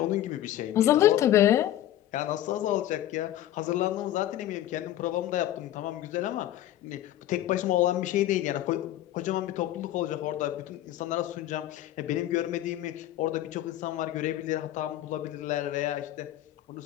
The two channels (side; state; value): right; quieter; 13.2 dB